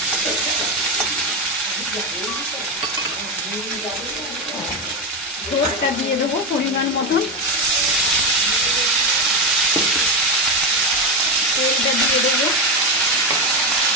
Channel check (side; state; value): both; normal; correlation 0.12